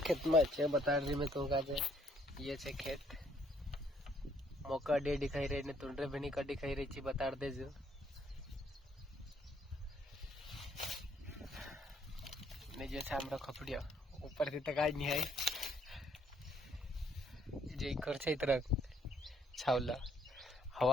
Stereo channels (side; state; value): both; normal; correlation 0.66